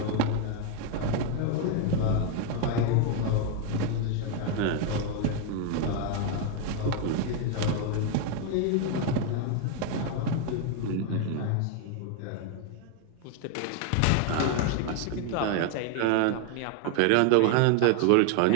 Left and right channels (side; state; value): both; different; correlation 0.00